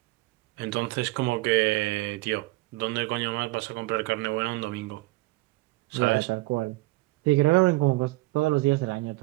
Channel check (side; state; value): left; quieter; 21.2 dB